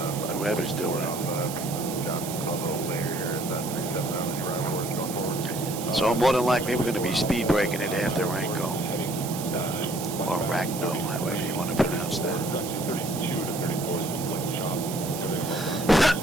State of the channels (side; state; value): right; noise; hiss, 9 dB below the sound